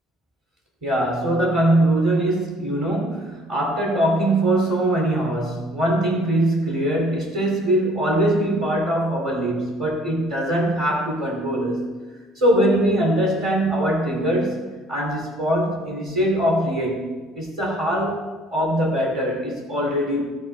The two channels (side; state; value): both; normal; correlation 0.57